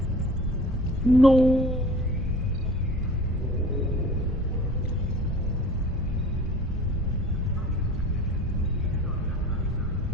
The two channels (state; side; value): normal; both; correlation 0.44